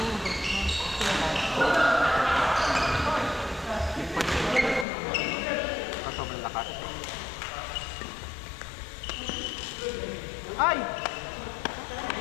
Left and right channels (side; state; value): right; drops out; at 4.9 s